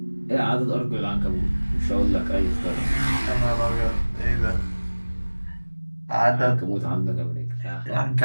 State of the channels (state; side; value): inverted; both; correlation -1.00